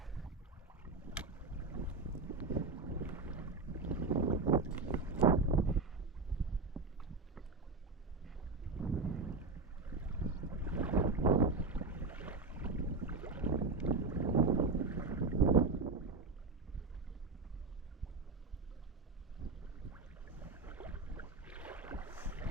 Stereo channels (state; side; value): quieter; left; 3.7 dB